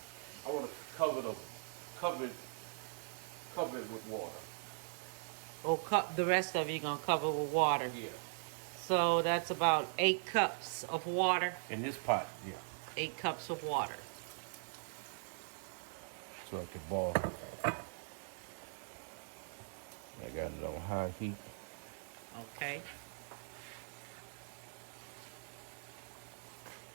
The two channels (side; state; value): left; silent; digital silence